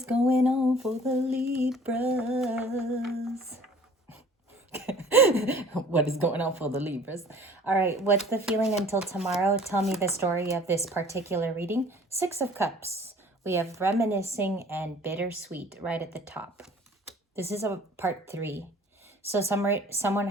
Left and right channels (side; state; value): both; normal; correlation 0.51